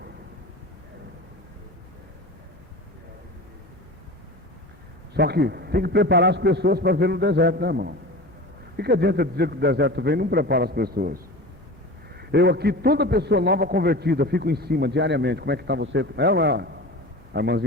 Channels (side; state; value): both; normal; correlation 0.33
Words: Só que tem que preparar as pessoas para ver no deserto, né, irmão? O que adianta dizer que o deserto vem e não prepara as pessoas? Eu aqui, toda pessoa nova convertida, fico em cima diariamente. Como é que está você? É ou não é? A